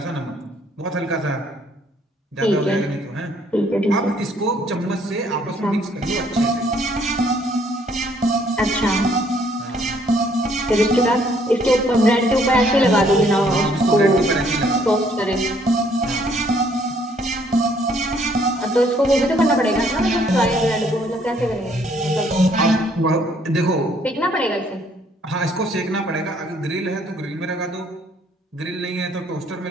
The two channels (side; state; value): both; normal; correlation 0.65